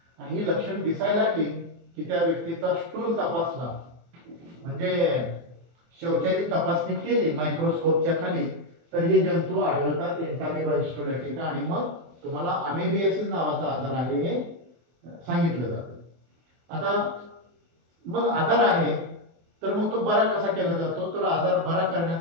आणि ही लक्षण दिसायला लागली की त्या व्यक्तीचा स्टूल तपासला म्हणजे शौचाची तपासणी केली मायक्रोस्कोपच्या खाली तर हे जंतू आढळतात, एंटामिबा हिस्टोलॅटिका. आणि मग तुम्हाला अमेबियासिस नावाचा आजार आहे हे सांगितलं जातं. आता मग आजार आहे तर मग तो बरा कसा केला जातो, तर आजार बरा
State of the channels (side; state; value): left; late; 24 ms